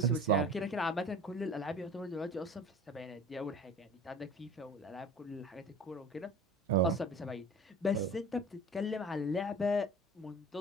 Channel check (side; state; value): both; normal; correlation 0.40